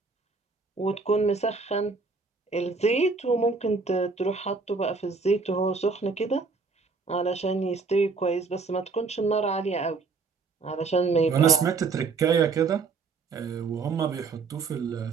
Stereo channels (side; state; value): left; quieter; 4.5 dB